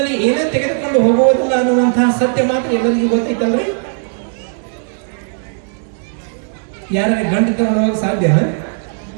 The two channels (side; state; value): left; silent; 67 dB below the other